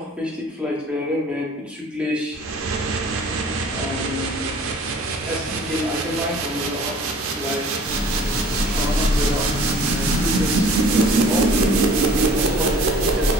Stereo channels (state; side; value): normal; both; correlation 0.50